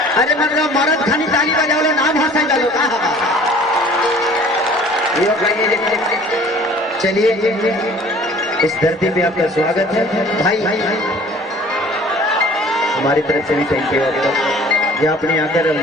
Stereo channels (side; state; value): both; normal; correlation 0.50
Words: अरे मतलब मरद खानी ताली बजाओ, नाम हंसा डालो कहा। चलिए इस धरती पे आपका स्वागत है भाई। हमारी तरफ से भी थैंक यू आपको, ये आपने